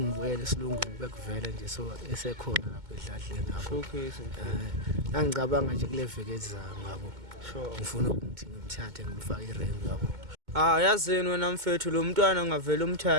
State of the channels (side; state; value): left; late; 2.2 ms